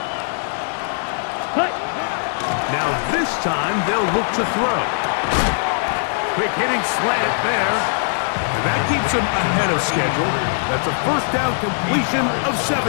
Now this time they'll look to throw. Quick hitting slant there. And that keeps him ahead of schedule. That's a first down completion of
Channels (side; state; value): right; silent; digital silence